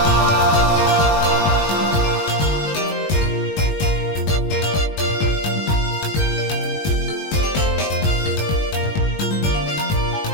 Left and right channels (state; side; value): late; right; 20 ms